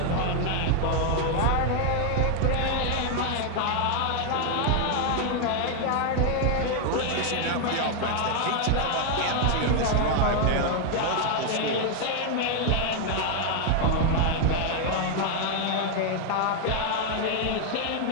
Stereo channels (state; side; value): different; both; correlation 0.00